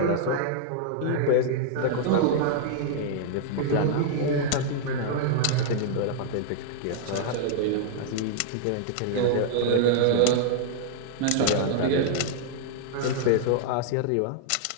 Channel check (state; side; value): different; both; correlation -0.01